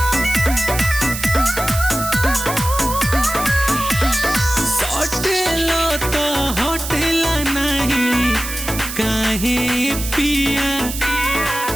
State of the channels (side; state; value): right; noise; hiss, 7 dB below the sound